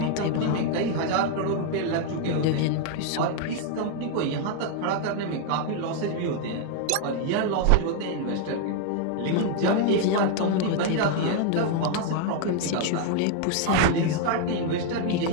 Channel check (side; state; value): both; different; correlation 0.00